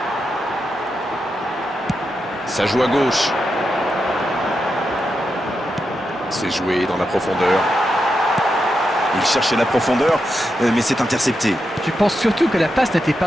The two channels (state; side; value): normal; both; correlation 0.86